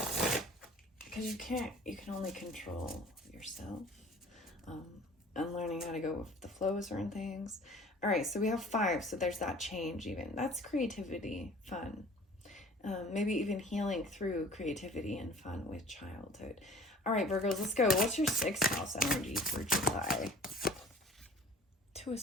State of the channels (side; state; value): both; normal; correlation 0.47